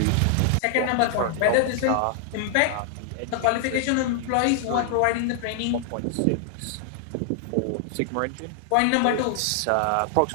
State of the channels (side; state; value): both; different; correlation 0.00